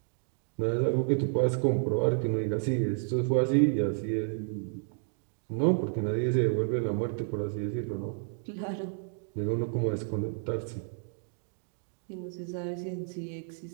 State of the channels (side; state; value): left; silent; 57 dB below the other